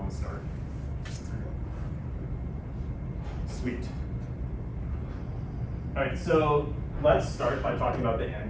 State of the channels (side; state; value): both; identical; correlation 1.00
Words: to start. Sweet. All right, so let's start by talking about the